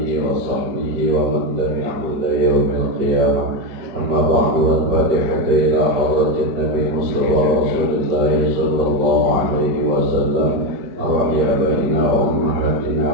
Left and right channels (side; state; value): left; late; 5.1 ms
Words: wa sahbihi wa man tabi'ahu ila yaumil qiyamah. Amma ba'du, al-fatihatu ila hadratin Nabi Mustafa Rasulullah sallallahu alaihi wasallam wa ya baina wa ummahatina